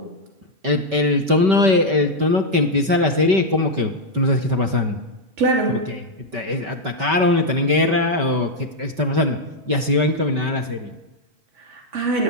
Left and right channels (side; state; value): left; late; 5.2 ms